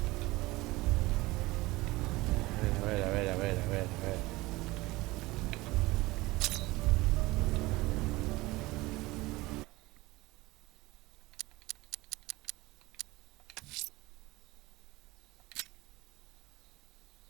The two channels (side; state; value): left; quieter; 20.5 dB